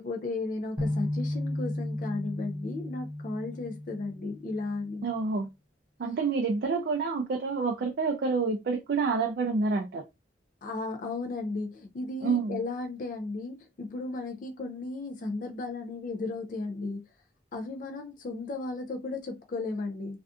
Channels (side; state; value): both; normal; correlation 0.49